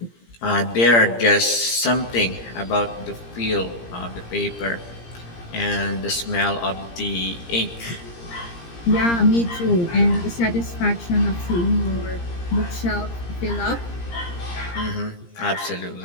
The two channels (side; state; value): right; late; 17 ms